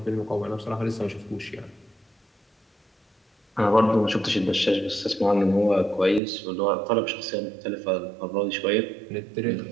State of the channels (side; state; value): left; drops out; at 6.2 s